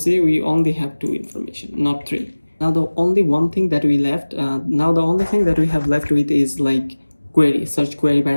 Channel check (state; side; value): inverted; both; correlation -1.00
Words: we only have 2 information, not 3. Now the only one thing that we left, now the only thing that we have left with is like query, search query